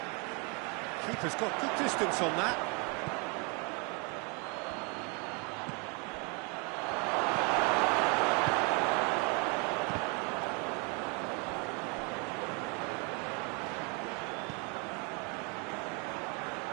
Keeper's got good distance on that.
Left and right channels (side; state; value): left; quieter; 33.2 dB